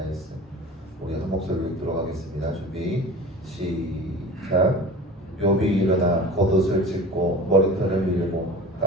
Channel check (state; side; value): normal; both; correlation 0.38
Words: 우리 한 목소리로 읽도록 하겠습니다. 준비 시작. 욥이 일어나 겉옷을 찢고 머리털을 밀고